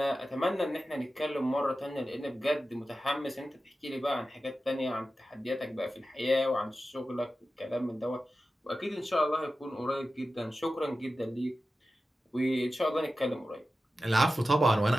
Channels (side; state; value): both; normal; correlation 0.94